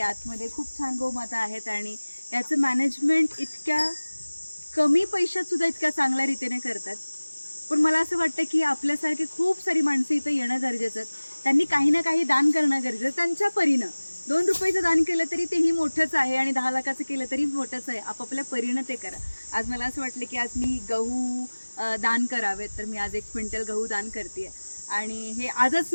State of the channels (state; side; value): inverted; both; correlation -1.00